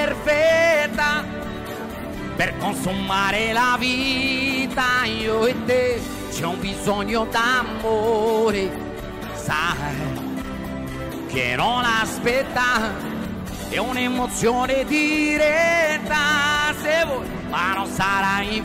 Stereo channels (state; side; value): identical; both; correlation 1.00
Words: per consumare la vita. Io e te c'è un bisogno d'amore, sai che non aspetta, è un'emozione diretta, se vuoi, ma non sarà